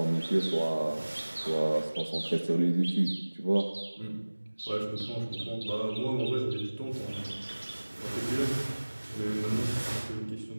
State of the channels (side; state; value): both; inverted; correlation -1.00